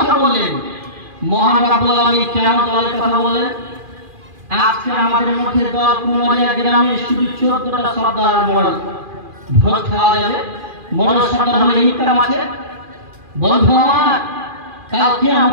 বললেন, মহান রাব্বুল আলামিন কেন দলের কথা বললেন? আজকে আমাদের মধ্যে দল কুমারিয়া গ্রামে শুধু 14টা সর্দার মোড়ল ভোট খাওয়া যাবে। মোড়ল সর্দার হলে ইনকাম আছে। বন্ধু আমার, কাল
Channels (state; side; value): late; left; 2.4 ms